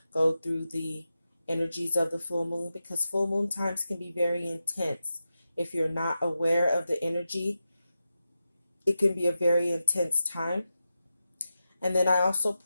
go through the energies of the full moon, because full moon times can be very intense. If you're not aware of the energy, it can be a very intense time. And then I also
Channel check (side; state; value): both; inverted; correlation -0.90